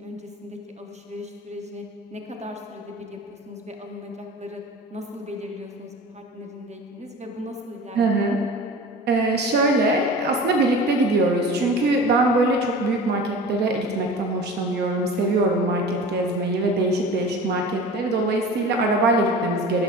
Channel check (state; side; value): normal; both; correlation 0.37